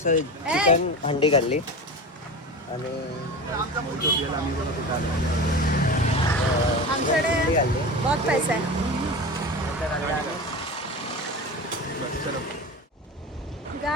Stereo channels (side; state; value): both; normal; correlation 0.28